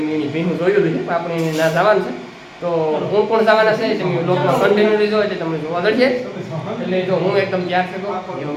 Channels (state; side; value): identical; both; correlation 1.00